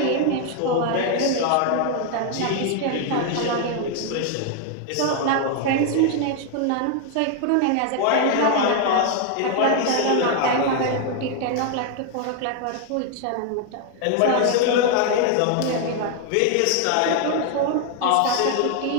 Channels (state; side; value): different; both; correlation 0.00